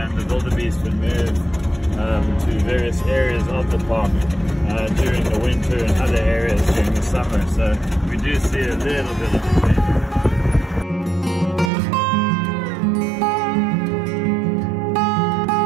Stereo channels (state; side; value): drops out; left; at 11.7 s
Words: and the wildebeest would move to various areas of the park during the winter and other areas during the summer. So we do see a little bit of a change.